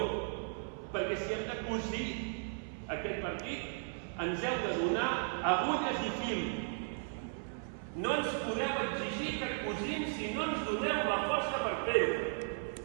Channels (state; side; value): silent; left; 54 dB below the other